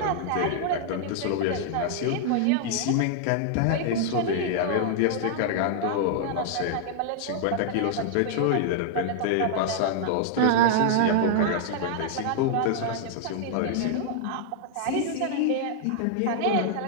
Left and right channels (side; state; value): both; different; correlation -0.01